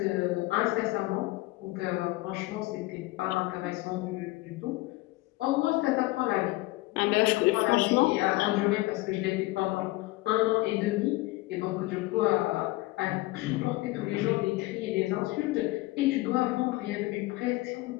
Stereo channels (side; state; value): right; quieter; 19.9 dB